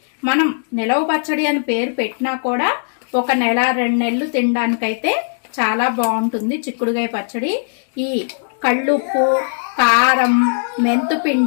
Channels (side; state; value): right; silent; digital silence